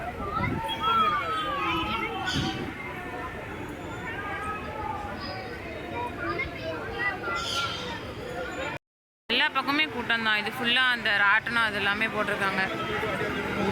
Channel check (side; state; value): both; identical; correlation 1.00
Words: எல்லா பக்கமே கூட்டம் தான். இது ஃபுல்லாக அந்த ராட்டனம் அது எல்லாமே போட்டிருக்காங்க.